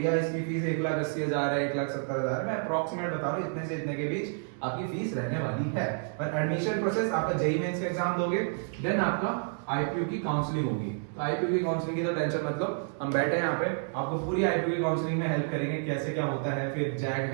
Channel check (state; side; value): silent; left; 58 dB below the other